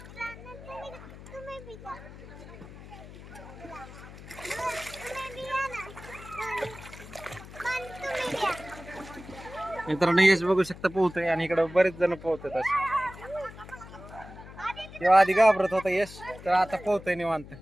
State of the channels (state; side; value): noise; left; hum, 16 dB below the sound